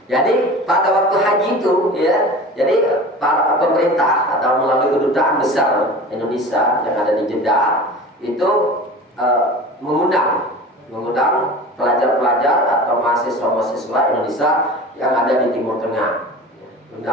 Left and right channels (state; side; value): normal; both; correlation 0.36